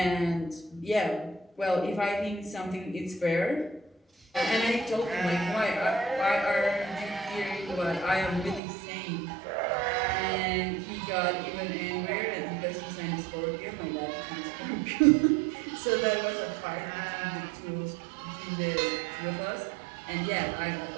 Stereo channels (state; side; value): drops out; left; at 8.6 s